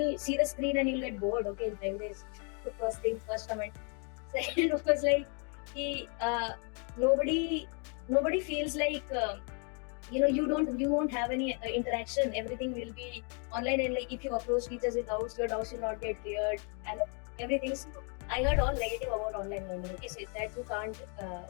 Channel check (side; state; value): right; quieter; 38.5 dB